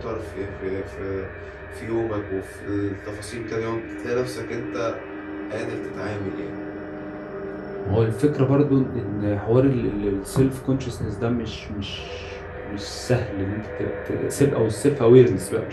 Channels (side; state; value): both; identical; correlation 1.00